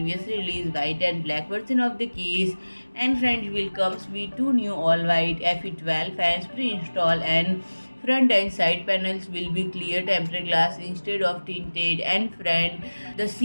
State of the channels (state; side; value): inverted; both; correlation -1.00